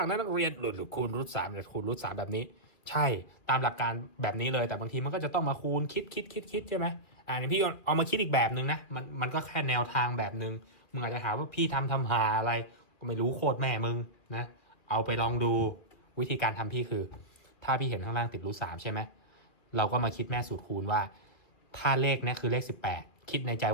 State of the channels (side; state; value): right; late; 2.3 ms